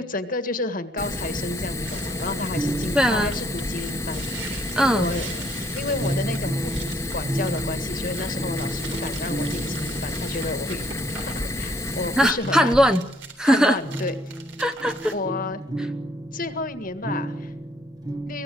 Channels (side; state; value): both; normal; correlation 0.65